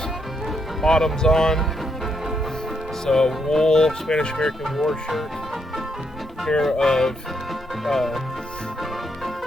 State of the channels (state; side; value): normal; both; correlation 0.77